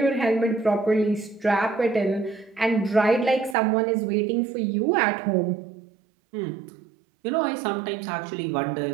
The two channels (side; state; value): left; drops out; at 3.6 s